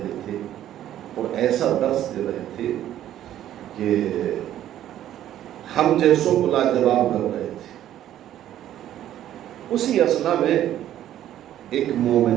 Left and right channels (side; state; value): left; quieter; 12.0 dB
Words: تھے اور ایسا درس دے رہے تھے کہ ہم جیسوں کو لاجواب کر رہے تھے. اسی اثنا میں ایک